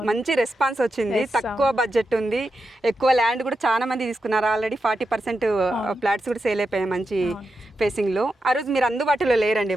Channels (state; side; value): normal; both; correlation 0.88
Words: మంచి రెస్పాన్స్ వచ్చింది. తక్కువ బడ్జెట్ ఉంది, ఎక్కువ ల్యాండ్ కూడా చాలా మంది తీసుకున్నారు. ఆల్రెడీ 40% ఫ్లాట్స్ కూడా సేల్ అయిపోయాయి మంచి ఫేసింగ్ లో. ఆ రోజు మీరు అందుబాటులో లేరండి